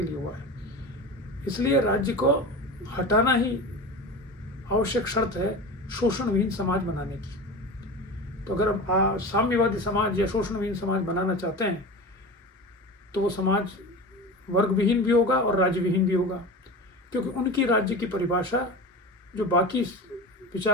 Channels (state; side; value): normal; both; correlation 0.30